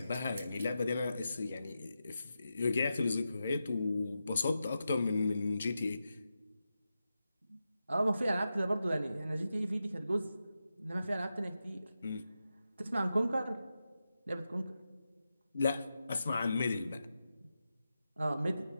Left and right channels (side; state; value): both; inverted; correlation -0.90